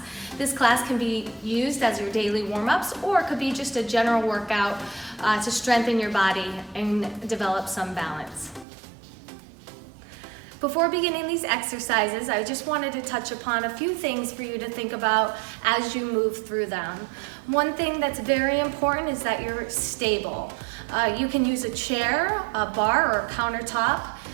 This class can be used as your daily warm-ups, or it could be just a general workout to strengthen your body and develop some balance. Before beginning these exercises, I just wanted to touch upon a few things for you to think about as you move through them. One thing that's very important is that you're stable. You can use a chair, a bar, or a countertop,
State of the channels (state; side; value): drops out; left; at 8.7 s